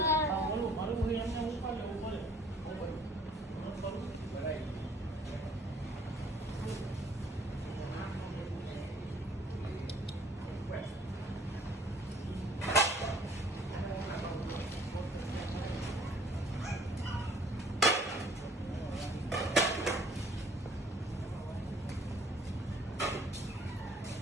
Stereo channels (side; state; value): both; normal; correlation 0.56